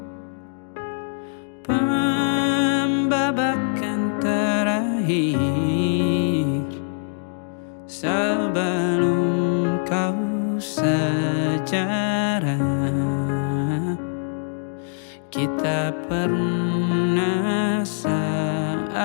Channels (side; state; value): right; silent; digital silence